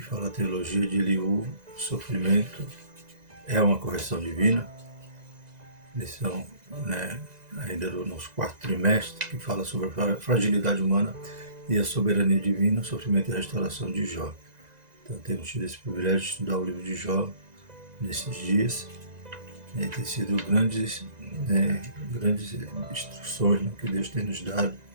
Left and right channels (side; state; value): left; late; 2.0 ms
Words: a teologia de Eliú, o sofrimento é uma correção divina. Lição, ainda do nosso quarto trimestre, que fala sobre a fragilidade humana e a soberania divina, o sofrimento e a restauração de Jó. Então temos tido esse privilégio de estudar o livro de Jó nesses dias. Tem sido grandes instruções que Deus tem nos dado